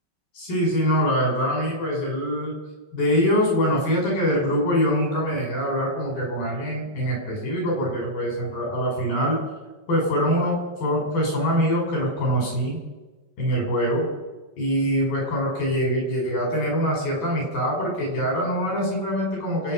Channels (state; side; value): late; right; 5.3 ms